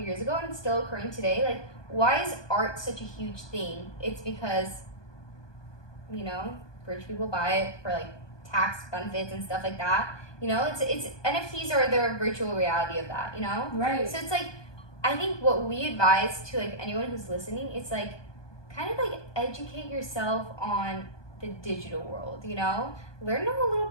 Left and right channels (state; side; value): late; right; 1.2 ms